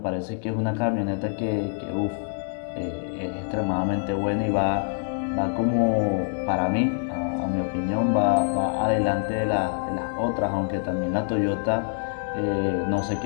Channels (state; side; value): silent; right; digital silence